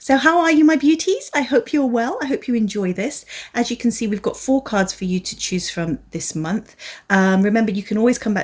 how are you, my beauties? I hope you're well. I hope you enjoy this. As you can see, we've got 4 cards for you to choose from this month. Remember, you can always come back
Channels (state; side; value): identical; both; correlation 1.00